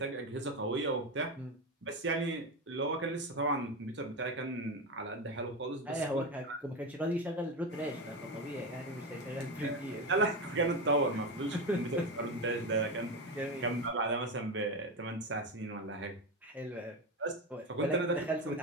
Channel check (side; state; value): both; normal; correlation 0.17